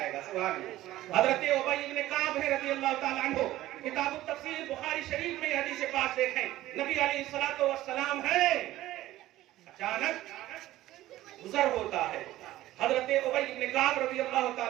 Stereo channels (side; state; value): left; quieter; 15.4 dB